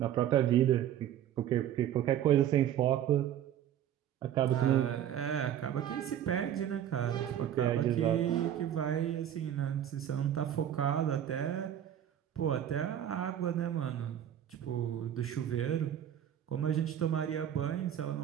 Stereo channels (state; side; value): quieter; left; 10.5 dB